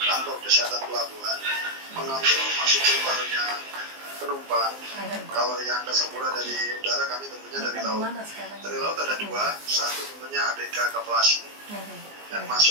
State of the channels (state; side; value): late; left; 19 ms